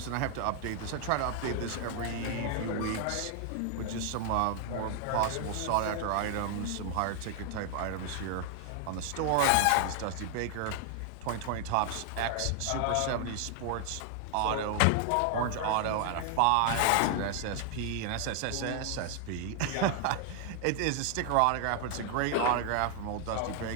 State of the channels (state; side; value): different; both; correlation 0.00